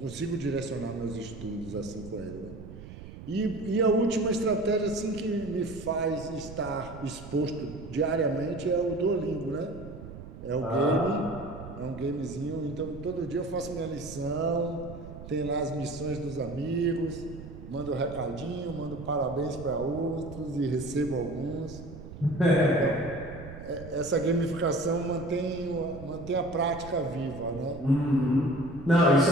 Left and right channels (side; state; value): right; noise; rumble, 13 dB below the sound